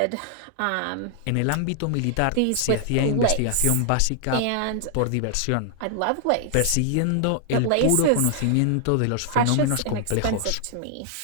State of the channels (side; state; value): both; different; correlation 0.00